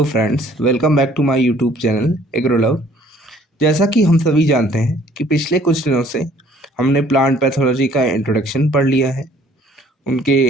friends, welcome back to my YouTube channel Agrolove. जैसा कि हम सभी जानते हैं कि पिछले कुछ दिनों से हमने प्लांट पैथोलॉजी का इंट्रोडक्शन पढ़ लिया है, उनके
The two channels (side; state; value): both; normal; correlation 0.58